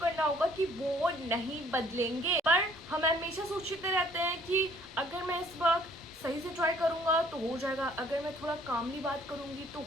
होगा कि वो नहीं बदलेंगे। पर हम हमेशा सोचते रहते हैं कि अगर मैं इस वक्त सही से ट्राई करूंगा तो हो जाएगा, अगर मैं थोड़ा कामली बात करूंगी तो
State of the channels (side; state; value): both; normal; correlation 0.59